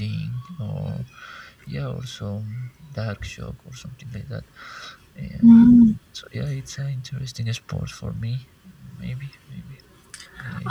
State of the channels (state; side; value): identical; both; correlation 1.00